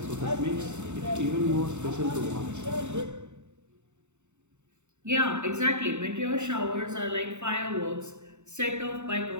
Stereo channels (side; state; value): left; late; 0.83 ms